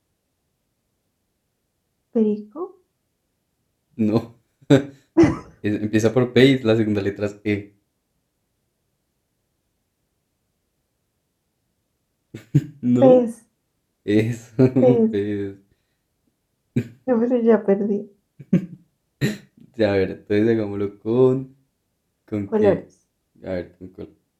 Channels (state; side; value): identical; both; correlation 1.00